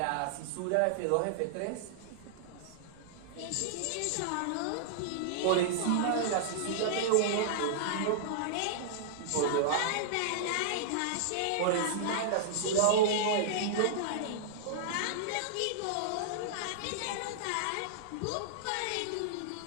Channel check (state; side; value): different; both; correlation -0.01